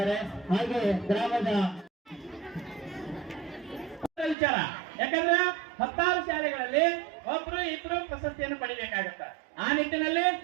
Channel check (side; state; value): left; drops out; at 4.4 s